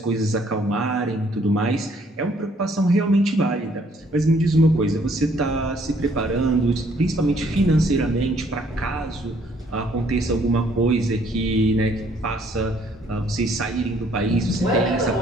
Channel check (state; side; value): normal; both; correlation 0.64